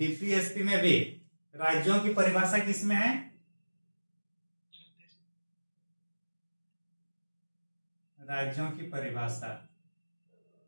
में भी राज्यों की परिभाषा किसमें है? राज्यों की परिभाषा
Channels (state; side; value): inverted; both; correlation -1.00